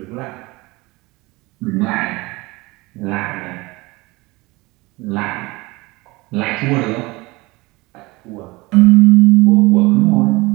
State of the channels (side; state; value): left; quieter; 22.9 dB